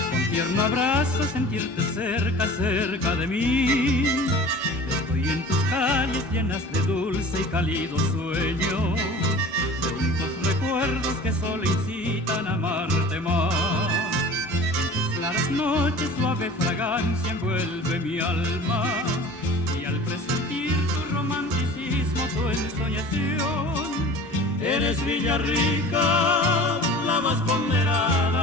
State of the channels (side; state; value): both; normal; correlation 0.41